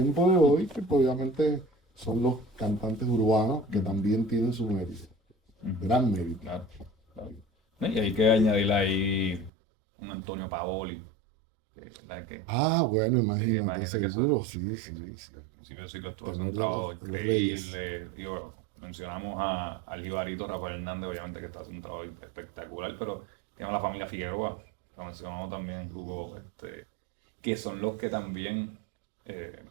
de hoy, que pues, obviamente son los cantantes urbanos que Ujú. también tienen su mérito, Ujú. gran mérito. Claro, claro. No, y hay que añadirle ahí un Antonio Paoli, que, ¿verdad? Que Ah, bueno, sí, imagínate, imagínate que eso, seguro, sí, sí, sí, sí, sí. al principio del siglo estuvo haciendo un Tenor trabajo de los Reyes. increíble. Y bueno, mencionamos al jibarito Rafael Hernández, obviamente que está haciendo un trabajo espectacular, pero tenemos la familia Figueroa, que mencionamos también, Hugo, que son los que también eh,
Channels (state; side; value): drops out; left; at 9.5 s